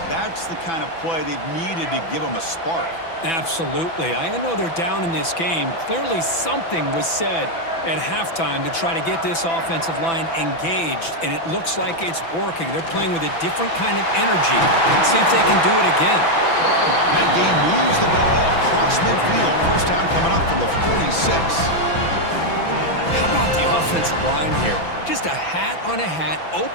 That's the kind of play they've needed to give them a spark. Absolutely. I know they're down in this game. Clearly something was said at halftime to try to get this offensive line engaged, and it looks like it's working. They're playing with a different kind of energy. Let's see if they can do it again. That game moves the ball across midfield. First down coming up from the 46. How about the offensive line here? Just a hat on a hat,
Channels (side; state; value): right; late; 6.0 ms